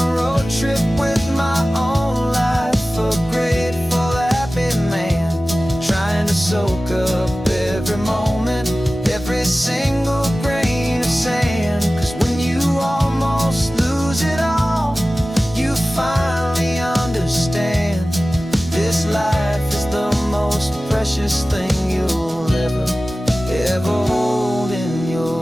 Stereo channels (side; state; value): both; normal; correlation 0.96